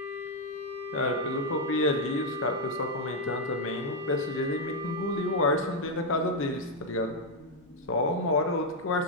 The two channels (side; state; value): both; normal; correlation 0.01